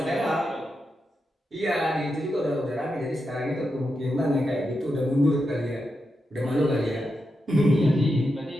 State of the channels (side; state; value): both; normal; correlation 0.87